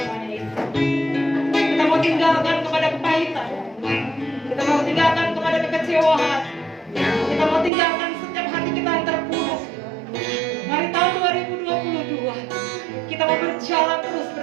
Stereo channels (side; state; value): left; drops out; at 7.7 s